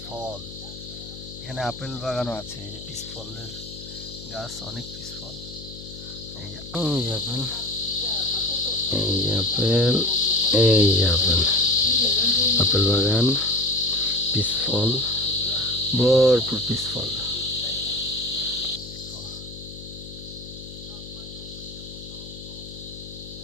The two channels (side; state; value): left; noise; hum, 14 dB below the sound